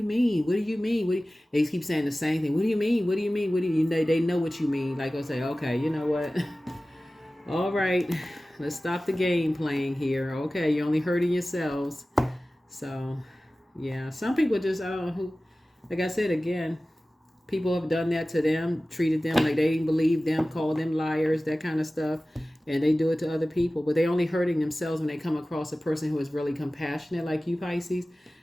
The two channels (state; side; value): normal; both; correlation 0.97